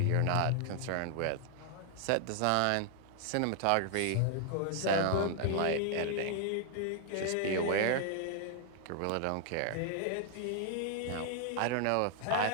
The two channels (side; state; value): both; different; correlation 0.00